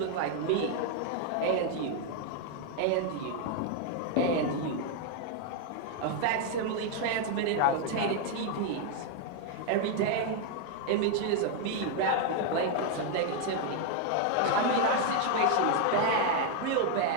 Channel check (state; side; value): different; both; correlation 0.00